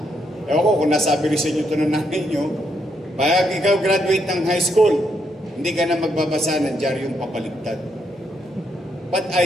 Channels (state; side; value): normal; both; correlation 0.77